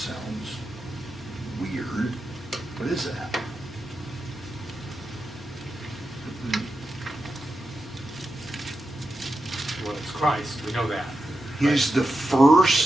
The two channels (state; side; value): normal; both; correlation 0.89